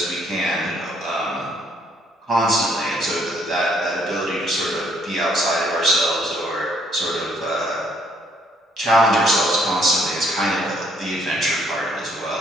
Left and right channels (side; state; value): both; normal; correlation 0.67